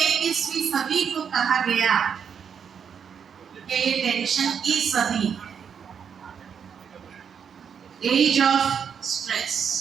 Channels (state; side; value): quieter; left; 7.3 dB